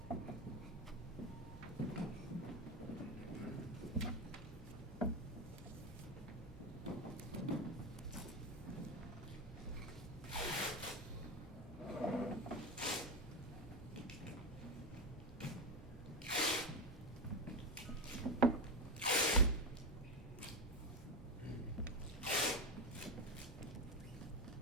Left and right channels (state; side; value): normal; both; correlation 0.15